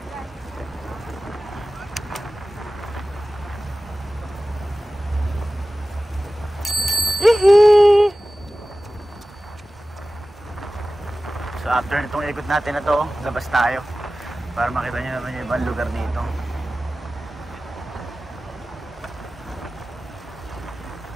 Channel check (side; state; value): both; normal; correlation 0.96